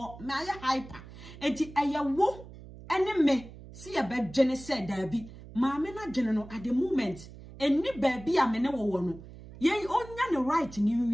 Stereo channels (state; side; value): noise; right; hum, 16 dB below the sound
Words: me aye hyper enti ayewo ene me see a bed dwene say da bi ma me na dwene no at the moment eni ba bi a me ne wo no ye onya ne right ni